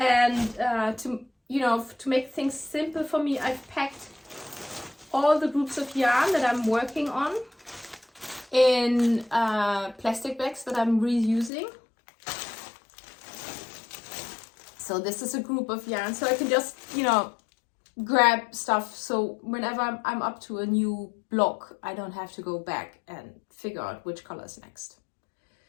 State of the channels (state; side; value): drops out; right; at 11.5 s